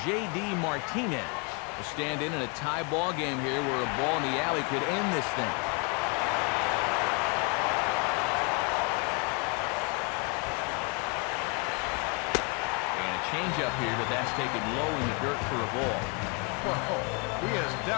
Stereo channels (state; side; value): quieter; right; 33.0 dB